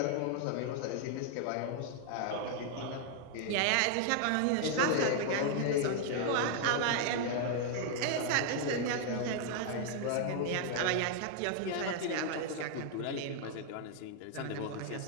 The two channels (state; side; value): different; both; correlation 0.00